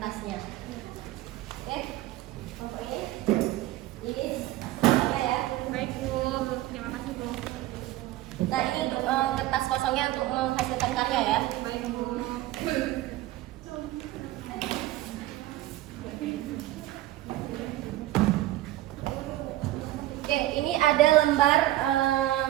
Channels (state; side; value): quieter; left; 16.0 dB